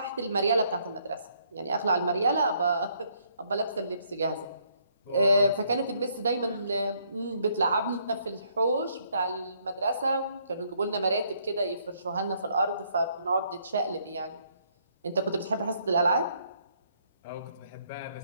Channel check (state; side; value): inverted; both; correlation -0.69